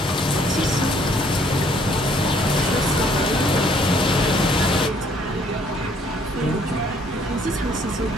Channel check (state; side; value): normal; both; correlation 0.63